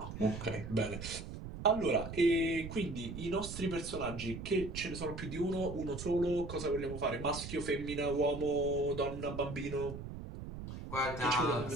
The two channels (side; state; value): right; noise; rumble, 9 dB below the sound